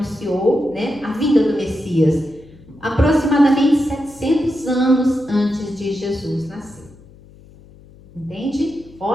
né, a vinda do Messias, aproximadamente 700 anos antes de Jesus nascer. Entende?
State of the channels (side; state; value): left; noise; hum, 23 dB below the sound